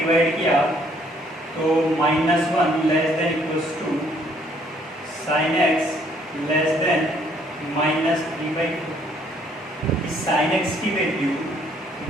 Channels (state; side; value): normal; both; correlation 0.65